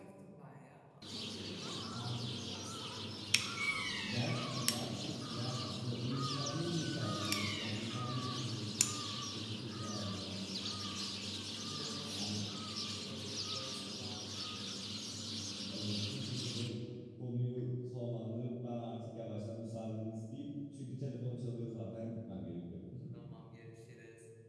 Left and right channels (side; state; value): both; identical; correlation 1.00